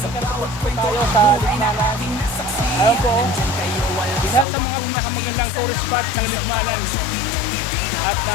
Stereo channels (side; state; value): right; drops out; at 4.5 s